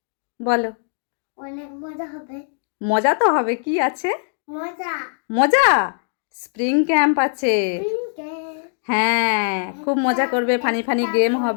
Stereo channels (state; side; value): silent; right; digital silence